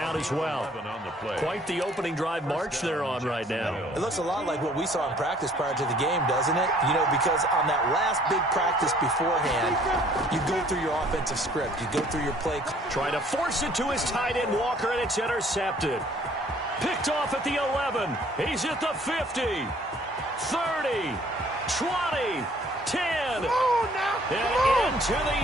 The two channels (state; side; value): normal; both; correlation 0.57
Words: as well. Quite the opening drive march they're on right now. It looks a lot like what we saw in practice prior to the game, doesn't it? You know, because on that last big practice beforehand, you go through your offensive script. You go through your play. Try to force it to his tight end, Walker, and it's intercepted. Picked off at the 11. He's at the 50. 30, 20, 10, and into the